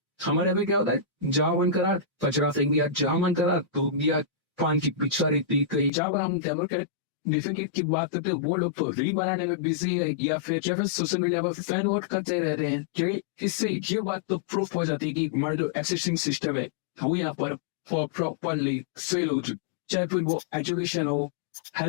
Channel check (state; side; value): drops out; right; at 5.9 s